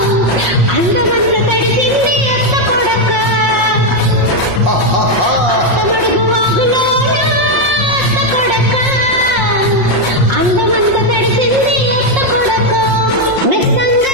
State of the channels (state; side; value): late; left; 5.6 ms